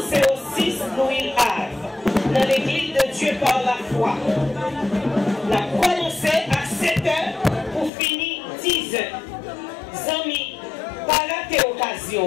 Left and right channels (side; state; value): right; drops out; at 7.9 s